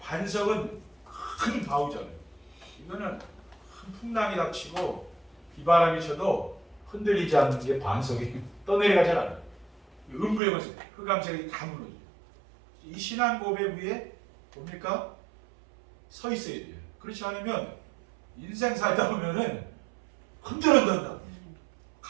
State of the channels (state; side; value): drops out; left; at 10.4 s